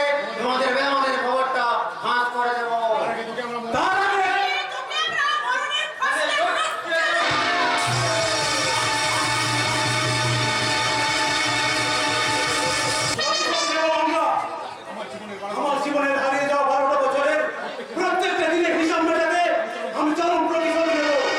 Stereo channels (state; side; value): identical; both; correlation 1.00